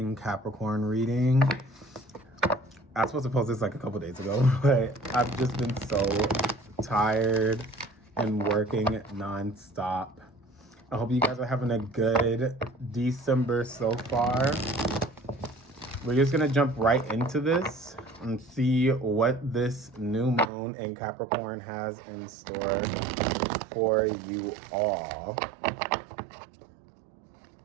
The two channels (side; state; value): left; drops out; at 20.5 s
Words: Capricorn reading. I was supposed to post this like a couple days ago, but I've just been so tired and working nonstop. I hope you guys are having a good December so far. We're just going to jump right into this and see what this new moon in Capricorn has in store for you all.